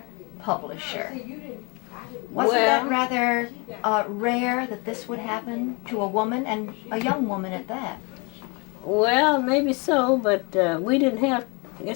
publisher. Wasn't that rather rare that this would happen to a woman, and a young woman at that? Well, maybe so, but I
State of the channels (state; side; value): quieter; right; 29.9 dB